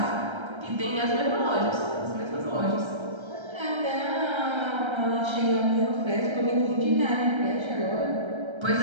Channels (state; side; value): late; left; 1.3 ms